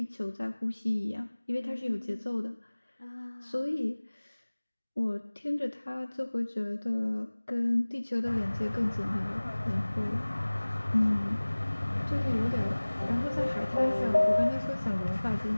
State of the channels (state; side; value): inverted; both; correlation -1.00